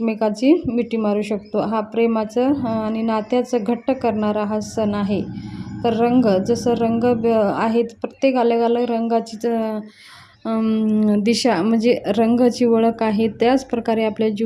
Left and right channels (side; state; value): both; identical; correlation 1.00